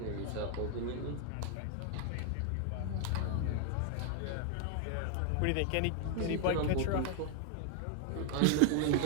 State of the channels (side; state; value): both; different; correlation 0.00